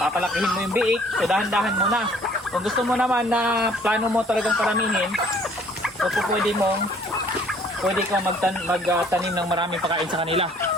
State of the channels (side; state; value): both; normal; correlation 0.57